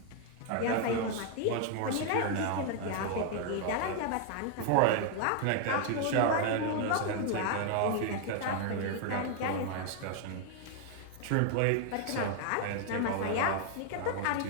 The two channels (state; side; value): different; both; correlation 0.00